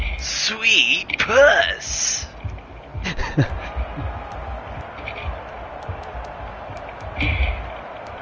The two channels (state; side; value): identical; both; correlation 1.00